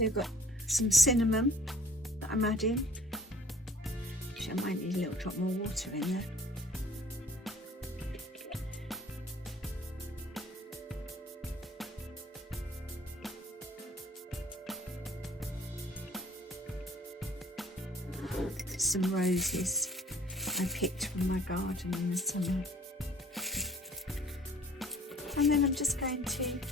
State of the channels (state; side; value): normal; both; correlation 0.52